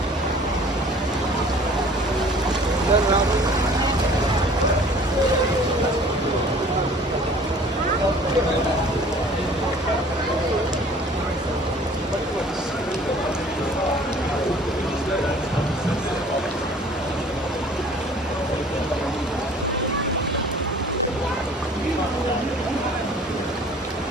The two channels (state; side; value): normal; both; correlation 0.50